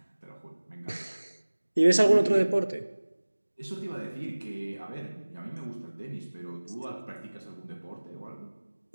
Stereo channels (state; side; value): inverted; both; correlation -1.00